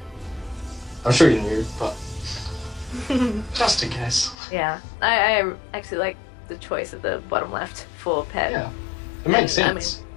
I'm sure you knew, but just in case. Yeah, I actually like the choice of the bottom left for Pezz. Yeah, it makes sense. I mean,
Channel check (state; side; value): drops out; right; at 4.4 s